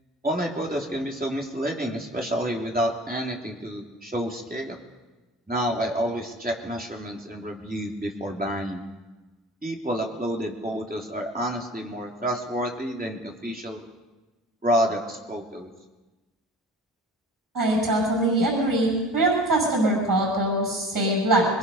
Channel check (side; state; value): both; normal; correlation 0.41